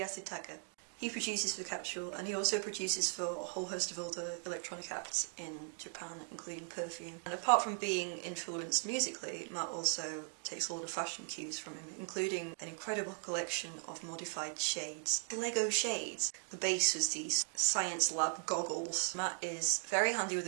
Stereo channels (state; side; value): silent; left; 52 dB below the other